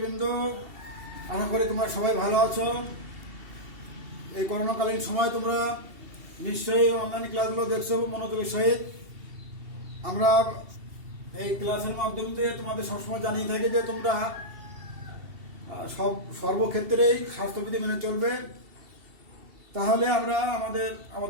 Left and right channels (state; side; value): late; left; 2.7 ms